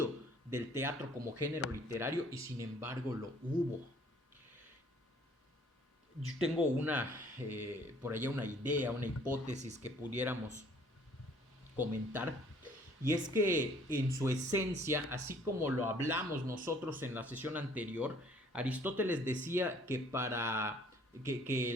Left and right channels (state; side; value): normal; both; correlation 0.58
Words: del teatro como género literario, y sin embargo lo hubo. Yo tengo por allá una idea, una hipótesis que pudiéramos comentar, y es que en su esencia, así como lo hablamos nosotros en la sesión anterior, Aristóteles decía que que